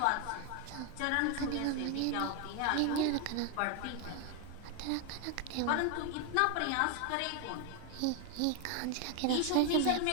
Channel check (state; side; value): different; both; correlation 0.01